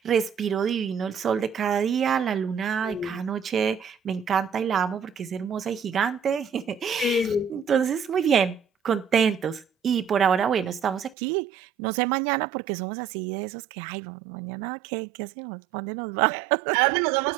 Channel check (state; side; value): drops out; left; at 11.2 s